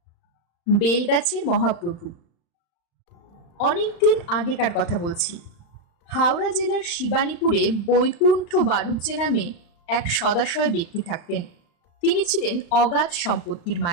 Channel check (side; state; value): right; late; 35 ms